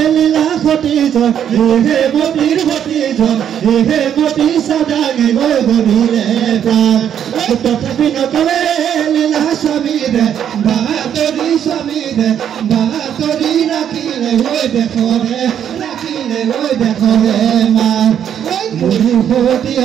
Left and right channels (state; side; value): quieter; left; 9.3 dB